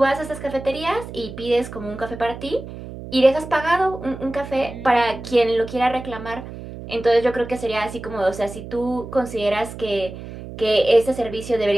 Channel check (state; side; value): noise; right; hum, 12 dB below the sound